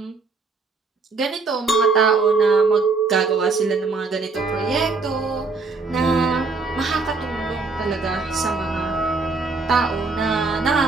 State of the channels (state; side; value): quieter; left; 4.2 dB